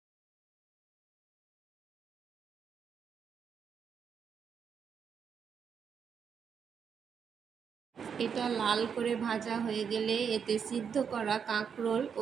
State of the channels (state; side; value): quieter; left; 7.0 dB